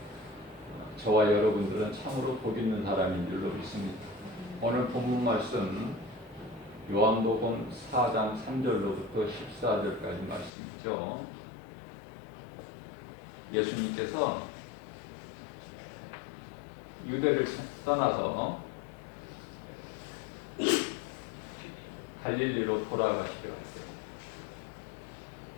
저와 여러분들은 참으로 복 있는 사람인 줄로 믿습니다. 오늘 본문 말씀 요한복음 4장 3절로부터 14절까지 말씀이죠. 예수님께서 유대를 떠나서 갈릴리로 돌아가시려 할 때,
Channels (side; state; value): right; drops out; at 10.5 s